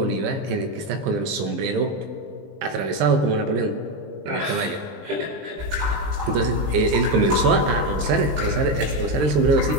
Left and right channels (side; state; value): left; late; 20 ms